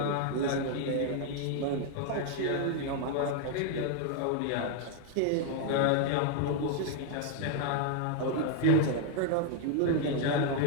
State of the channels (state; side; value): different; both; correlation 0.00